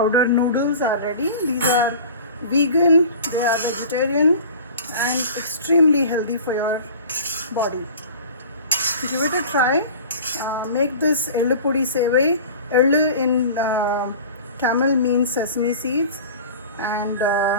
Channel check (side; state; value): both; inverted; correlation -0.40